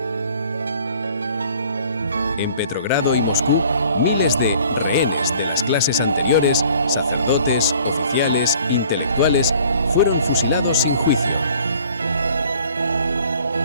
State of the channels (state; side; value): inverted; both; correlation -0.53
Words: En Petrogrado y Moscú, miles de rehenes de las clases anteriores, sacerdotes, oficiales, intelectuales, fueron fusilados sin juicio.